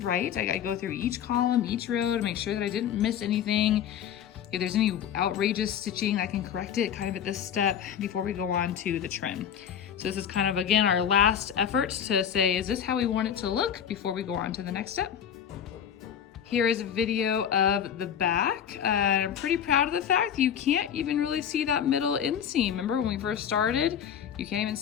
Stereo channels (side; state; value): right; quieter; 8.8 dB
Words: I go through each column, each row to make sure that I didn't miss anything. If there's any outrageous stitching, I can correct it kind of at this step before we go on to the trim. So this is kind of, again, our last effort to say, is this how we want it to look before we go on to the next step? Here is a video of the back. I'm pretty proud of the fact you can't even really see that middle inseam. Remember when we first started, you can't even